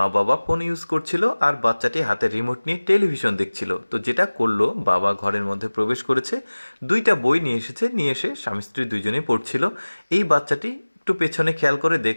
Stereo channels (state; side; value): inverted; both; correlation -1.00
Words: বাবা ফোন ইউজ করছিল আর বাচ্চাটি হাতে রিমোট নিয়ে টেলিভিশন দেখছিল। তো যেটা করলো, বাবা ঘরের মধ্যে প্রবেশ করেছে, দুইটা বই নিয়ে এসেছে, নিয়ে এসে স্বামী স্ত্রী দুইজনেই পড়ছিল। এই বাচ্চাটি একটু পেছনে খেয়াল করে